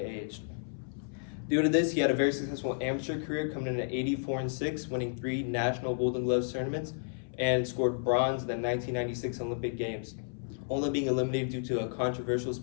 Due to this, he had a very successful amateur career, coming in at 84-6, winning 3 National Golden Gloves tournaments, and scored bronze in the 1996 Olympic Games, only being eliminated due to a controversial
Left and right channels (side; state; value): right; silent; 57 dB below the other